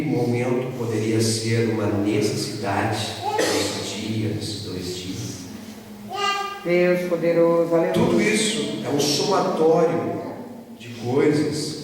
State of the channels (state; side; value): identical; both; correlation 1.00